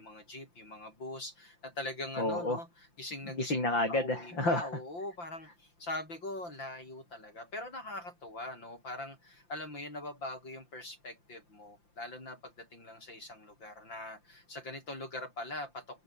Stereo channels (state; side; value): late; right; 5.8 ms